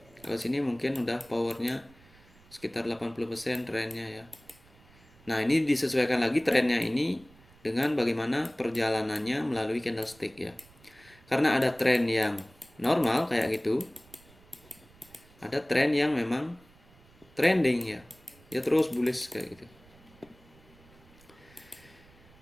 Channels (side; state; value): right; noise; rumble, 26 dB below the sound